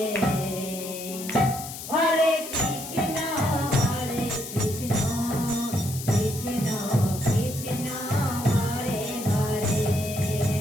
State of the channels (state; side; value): noise; left; hiss, 10 dB below the sound